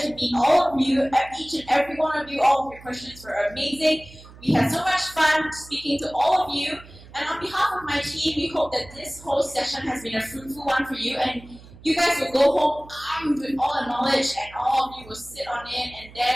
to meet all of you. Each and every one of you, all of your questions were amazing. We had so much fun speaking to all of you. And on behalf of my team, we hope that this whole session has been a fruitful one for you. And you guys will go home armed with all the knowledge, and all of you will sit on it and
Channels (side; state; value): right; noise; hum, 20 dB below the sound